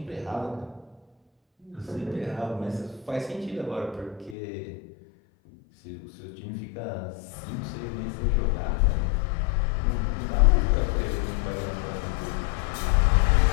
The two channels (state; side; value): drops out; right; at 4.4 s